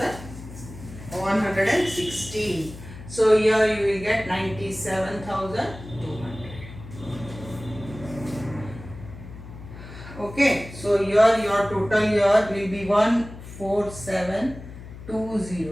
So here you will get 97,200. Okay, so here your total here will be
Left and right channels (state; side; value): noise; left; hum, 14 dB below the sound